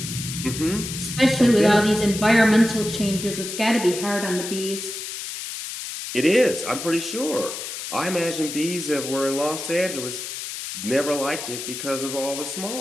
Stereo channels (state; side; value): noise; left; hiss, 7 dB below the sound